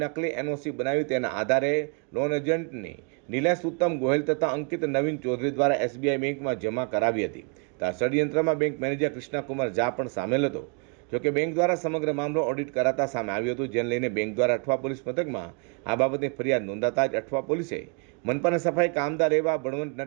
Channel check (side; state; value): left; quieter; 38.1 dB